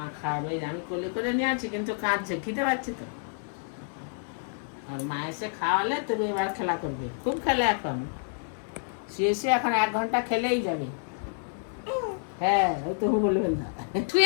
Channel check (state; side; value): silent; right; 59 dB below the other